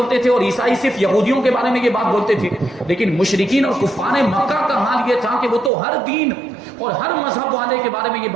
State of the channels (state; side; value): drops out; left; at 5.7 s